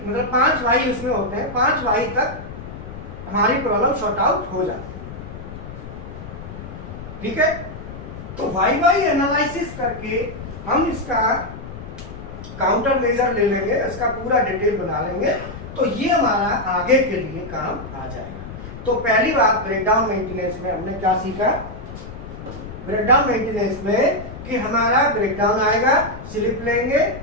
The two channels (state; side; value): noise; left; rumble, 12 dB below the sound